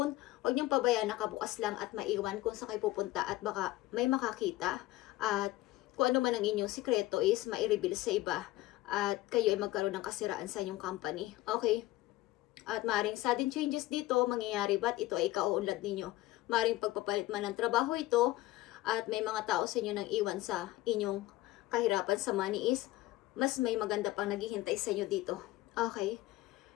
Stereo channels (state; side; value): quieter; right; 17.4 dB